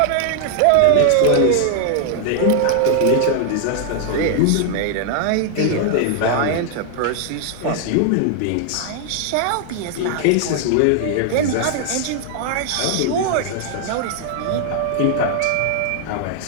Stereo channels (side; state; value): both; different; correlation 0.00